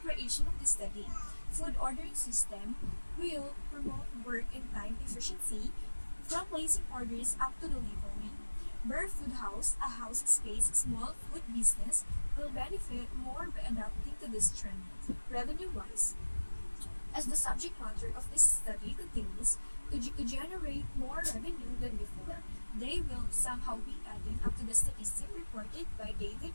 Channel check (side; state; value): both; inverted; correlation -1.00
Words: creation of the study. Food ordering system will promote work and time efficiency from placing orders up to delivery. Burp Foodhouse, a house space small food business, will benefit more by adapting to this trend. Revenue-wise, as the subject matter of this study continues to generate more revenue than before, they will somehow be added up to the statistic reported by David